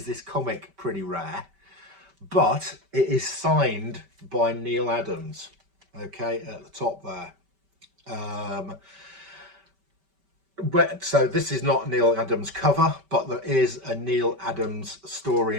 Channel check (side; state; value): left; late; 5.1 ms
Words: this comic pretty rare, but it is signed by Neal Adams. Okay, at the top there. So this is not Neal Adams cover, but there is a Neal Adams story